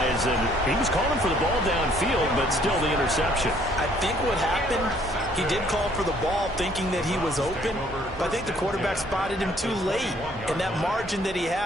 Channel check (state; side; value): normal; both; correlation 0.62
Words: and he was calling for the ball downfield, but still the interception. I think what happened, he did call for the ball thinking that he was open, but I think the quarterback spotted him too late. And that margin that he